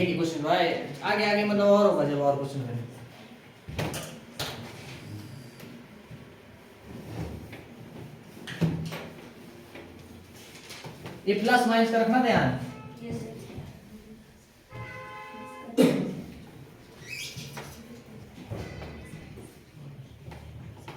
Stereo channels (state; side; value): identical; both; correlation 1.00